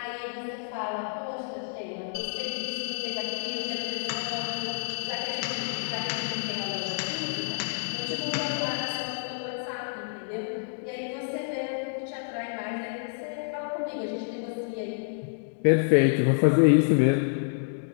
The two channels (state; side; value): silent; right; digital silence